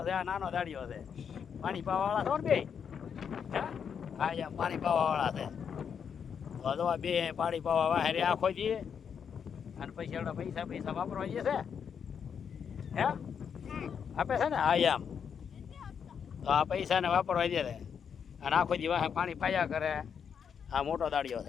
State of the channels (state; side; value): quieter; right; 7.3 dB